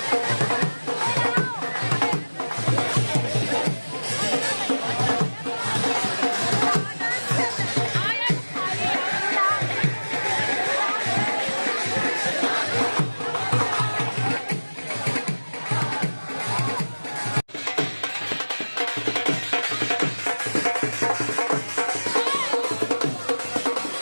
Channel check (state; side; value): inverted; both; correlation -1.00